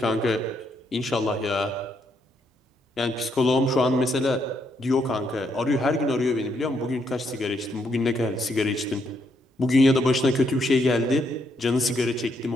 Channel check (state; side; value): normal; both; correlation 0.75